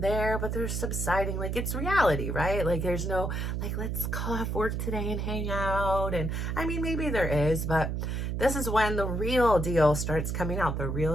but they're subsiding. Like, it's reality, right? Like, there's no, like, let's call off work today and hang out. And I mean, maybe there is, but this is when the real deal starts coming out, the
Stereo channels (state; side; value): noise; right; hum, 1 dB below the sound